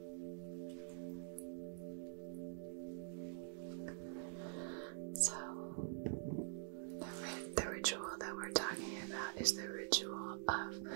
So, the ritual that we're talking about is the ritual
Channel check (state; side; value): silent; left; digital silence